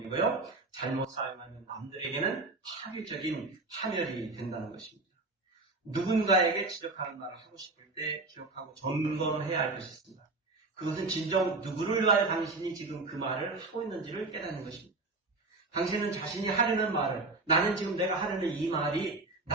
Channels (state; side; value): quieter; left; 3.4 dB